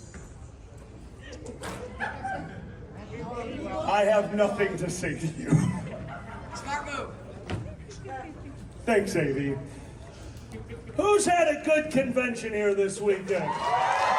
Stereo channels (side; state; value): both; identical; correlation 1.00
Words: I have nothing to say to you. Smart move. Thanks, AB. Who's had a good convention here this weekend?